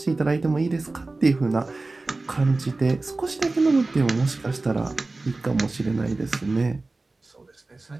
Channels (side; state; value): left; quieter; 3.3 dB